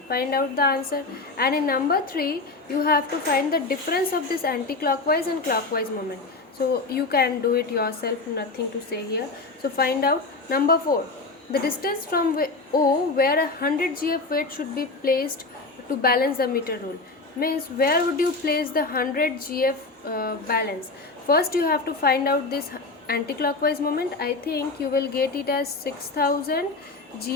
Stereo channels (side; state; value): right; quieter; 3.5 dB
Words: Find out the answer. And in number 3, you have to find the difference of this anti-clockwise and clockwise moment. So you can do it yourself, nothing to say here. So find out. Number 4, the distance from O where a 100 gf weight should be placed to balance the meter rule. Means where would you place the 100 gf balance? First you have to find out this anti-clockwise moment. I think you will get it as 6000